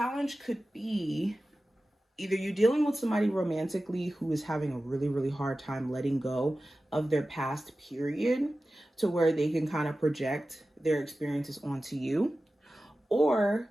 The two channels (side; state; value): both; normal; correlation 0.95